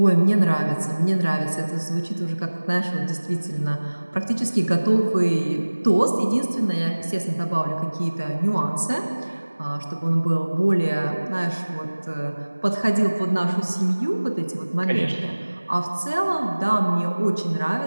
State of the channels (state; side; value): inverted; both; correlation -1.00